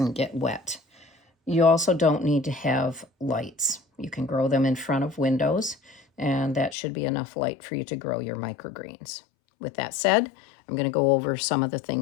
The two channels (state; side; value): drops out; right; at 6.8 s